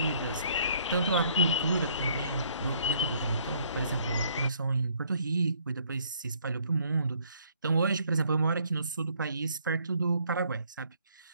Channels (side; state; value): both; inverted; correlation -0.64